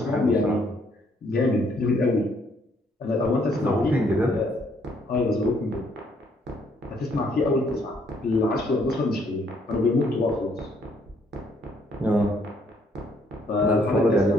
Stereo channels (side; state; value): both; normal; correlation 0.68